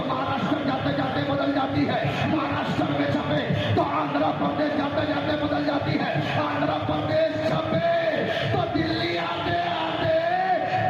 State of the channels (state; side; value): identical; both; correlation 1.00